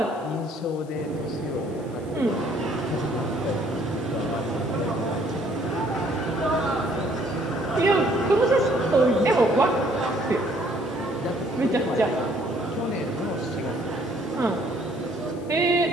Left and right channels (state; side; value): noise; left; hiss, 26 dB below the sound